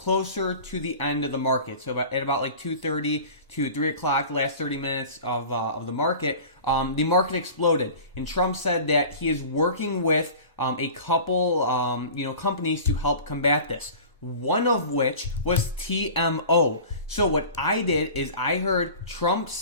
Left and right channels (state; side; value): inverted; both; correlation -0.39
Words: to the end of the market. So at about like 2:30 to 3 o'clock, the last 30 minutes of the market exploded. And Trump said that he is working with a couple companies to help combat this. One of which was TMO. So what I did is I heard Trump